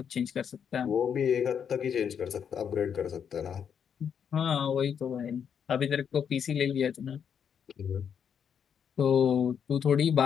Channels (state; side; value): quieter; right; 7.7 dB